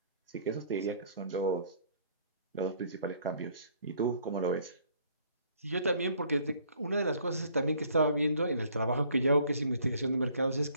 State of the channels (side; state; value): both; inverted; correlation -0.60